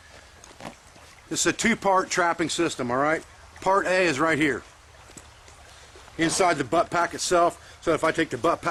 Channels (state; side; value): identical; both; correlation 1.00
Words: This is a two-part trapping system, alright? Part A is right here, inside the butt pack itself. So if I take the butt